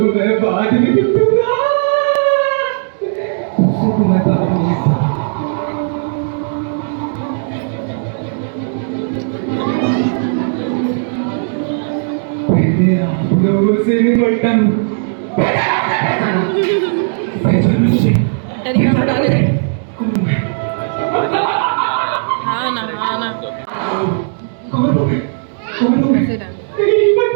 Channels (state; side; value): silent; left; digital silence